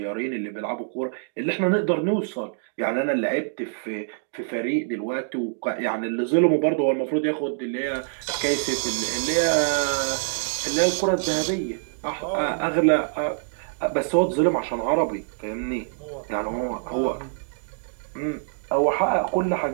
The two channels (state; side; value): silent; left; digital silence